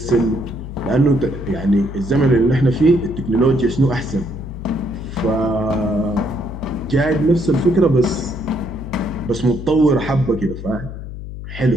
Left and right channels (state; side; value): noise; left; hum, 10 dB below the sound